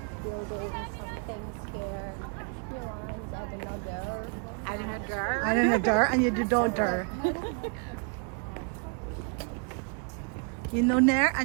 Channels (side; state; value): left; quieter; 38.8 dB